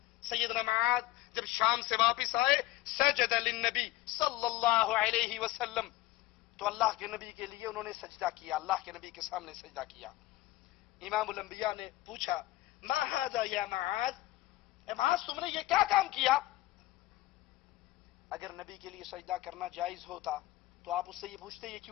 سیدنا معاذ جب شام سے واپس آئے، سجد للنبی صلی اللہ علیہ وسلم، تو اللہ کے نبی کے لیے انہوں نے سجدہ کیا، اللہ کے نبی کے سامنے سجدہ کیا۔ امام الانبیاء نے پوچھا ما ھذا یا معاذ، اے معاذ تم نے یہ کیا کام کیا؟ اگر نبی کے لیے سجدہ کرنا جائز ہوتا تو آپ اس سے یہ پوچھتے یہ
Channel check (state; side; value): quieter; right; 17.4 dB